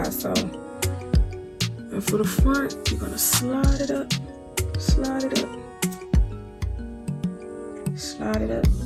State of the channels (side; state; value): both; identical; correlation 1.00